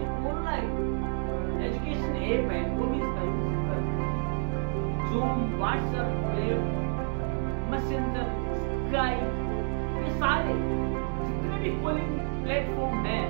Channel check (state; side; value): silent; left; digital silence